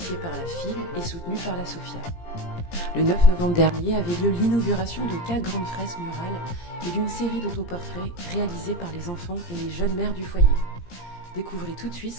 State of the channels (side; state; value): right; late; 17 ms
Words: par la FIL et soutenue par la SOFIA. Le 9 novembre dernier avait lieu l'inauguration de 4 grandes fresques murales et d'une série d'autoportraits réalisés par les enfants et les jeunes mères du foyer. Découvrez tout de suite